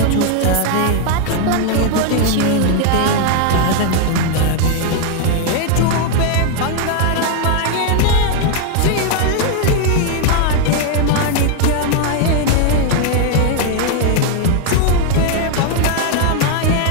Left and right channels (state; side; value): different; both; correlation 0.00